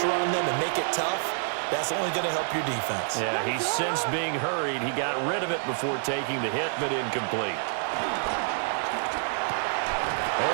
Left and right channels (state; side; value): silent; left; 60 dB below the other